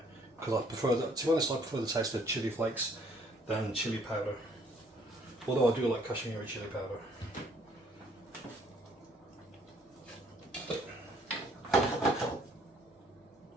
because I prefer that, to be honest, I prefer the taste of chili flakes than chili powder, although I do like Kashmiri chili powder.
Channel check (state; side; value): normal; both; correlation 0.63